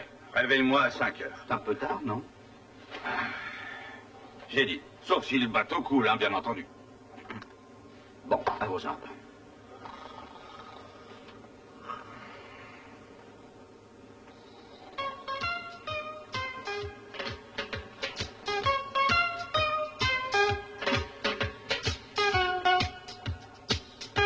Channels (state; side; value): identical; both; correlation 1.00